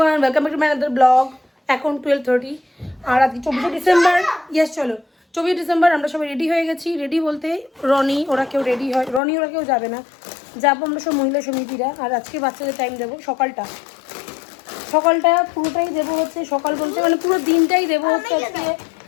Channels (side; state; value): right; drops out; at 9.2 s